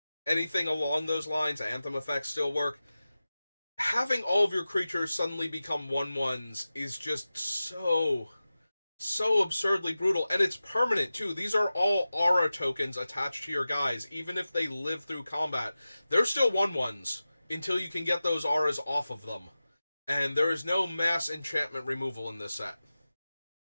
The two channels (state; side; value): inverted; both; correlation -0.95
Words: anything along those lines, anthem effects still work. having all of your creatures suddenly become 1/1s is just so absurdly brutal, and it's permanent too. These are all aura tokens attached to your guys. Even if they live through combat, they're still 1/1s until you can get those auras off of them. And there is no mass enchantment removal in this set.